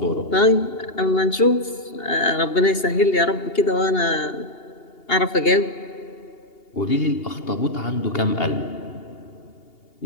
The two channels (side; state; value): right; late; 2.8 ms